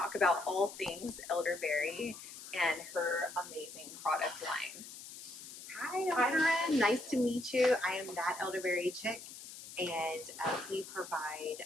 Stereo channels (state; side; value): noise; left; hiss, 13 dB below the sound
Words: about all things elderberry and her amazing product line. Hi, Korinne. Nice to meet you. I am that Elderberry chick, and we provide